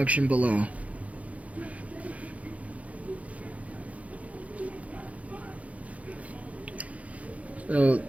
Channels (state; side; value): late; left; 0.066 ms